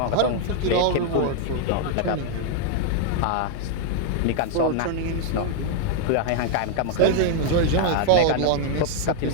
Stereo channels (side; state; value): both; different; correlation 0.00